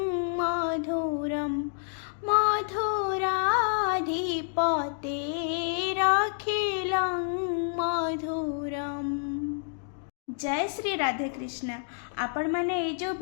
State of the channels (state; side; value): silent; right; digital silence